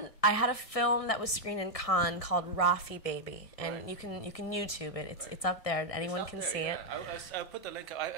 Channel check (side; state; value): right; late; 1.7 ms